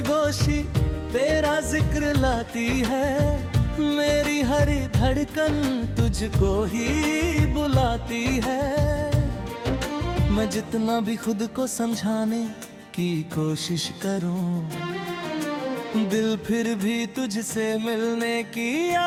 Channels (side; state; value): both; identical; correlation 1.00